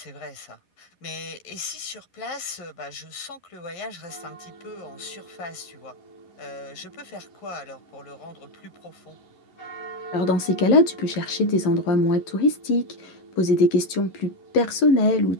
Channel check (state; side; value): late; right; 11 ms